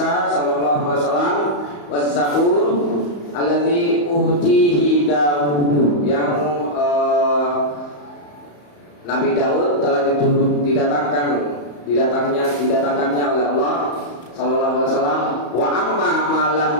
sallallahu alaihi wasallam. Was Zabur allati utihi Daud, yang Nabi Daud telah didatangkannya oleh Allah sallallahu alaihi wasallam. Wa amma ma lam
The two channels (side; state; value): right; late; 34 ms